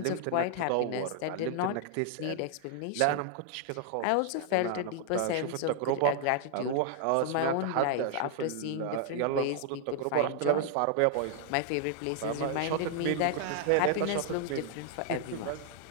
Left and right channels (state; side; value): different; both; correlation 0.00